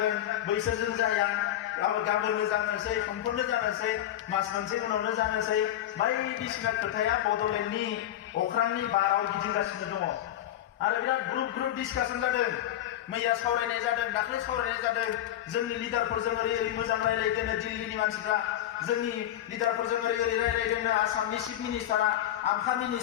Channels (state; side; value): quieter; right; 12.3 dB